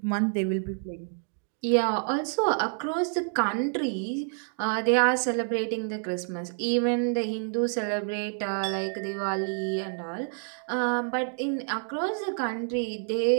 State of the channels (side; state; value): left; silent; 59 dB below the other